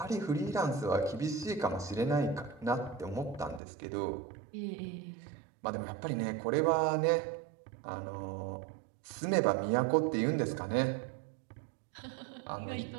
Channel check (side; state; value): left; drops out; at 3.6 s